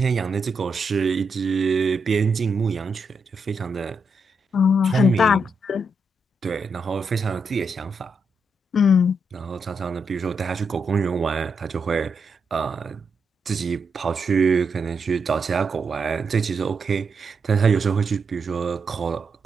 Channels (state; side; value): normal; both; correlation 0.81